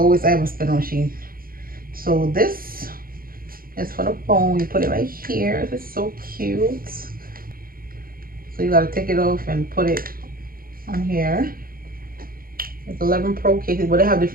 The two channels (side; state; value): left; late; 0.42 ms